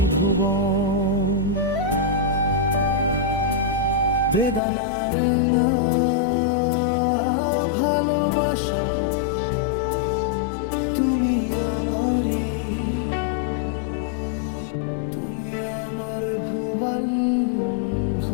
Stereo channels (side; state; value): right; drops out; at 4.6 s